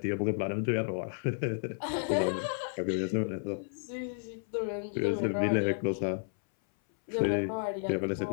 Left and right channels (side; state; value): right; silent; 56 dB below the other